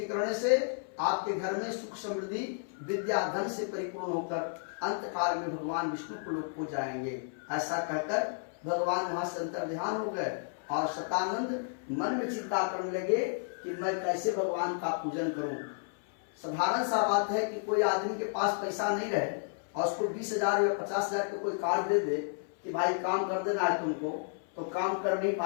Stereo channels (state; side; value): silent; right; 56 dB below the other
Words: करने से आपके घर में सुख समृद्धि विद्या धन से परिपूर्ण होकर अंत काल में भगवान विष्णु को लोक को जाएंगे। ऐसा कहकर भगवान वहां से अंतर ध्यान हो गए और शतानंद मन में चिंता करने लगे कि मैं कैसे भगवान का पूजन करूं। साधारण सा बात है कि कोई आदमी के पास पैसा नहीं रहे और उसको 20,000 या 50,000 का कोई कार्ड दे दे कि भाई काम कर देना है तुमको, तो काम कर नहीं